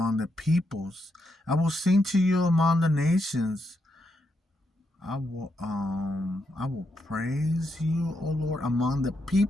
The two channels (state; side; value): normal; both; correlation 0.81